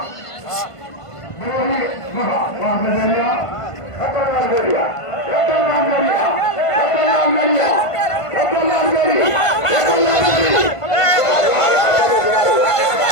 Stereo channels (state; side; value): late; right; 1.5 ms